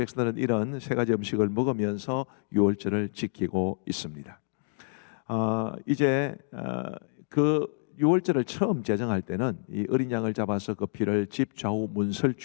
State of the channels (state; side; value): silent; right; digital silence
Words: 이런 세 가지 음식을 먹으면서 유월절을 지키고 있습니다. 이제 그 유월절을 처음 제정할 때는 이 어린 양을 잡아서 그 피를 집 좌우